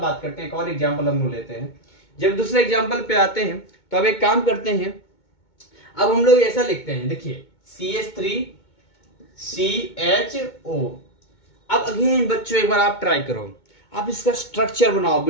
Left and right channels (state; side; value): late; right; 2.2 ms